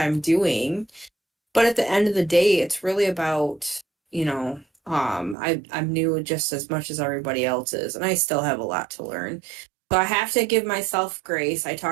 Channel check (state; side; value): drops out; left; at 5.4 s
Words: doing. But at the end of the day, it's really about, I'm new just as much as everybody else is, and I still have a lot to learn. So I have to give myself grace. I